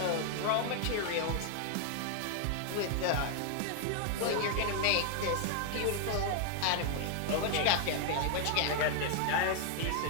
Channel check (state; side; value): different; both; correlation 0.00